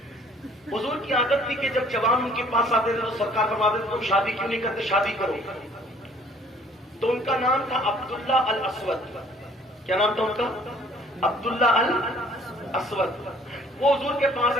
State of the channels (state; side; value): normal; both; correlation 0.57